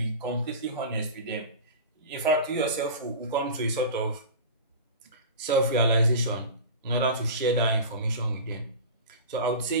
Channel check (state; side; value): inverted; both; correlation -0.32